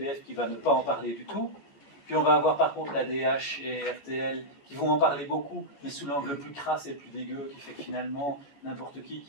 qui va ne pas en parler du tout, puis on va avoir par contre la DH et RTL qui vont en parler beaucoup, mais sous l'angle le plus crasse et le plus dégueu, qui fait que finalement, n'importe qui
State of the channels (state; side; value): late; right; 14 ms